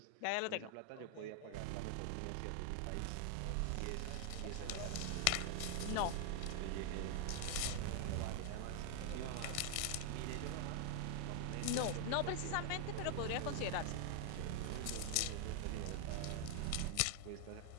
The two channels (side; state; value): both; different; correlation 0.00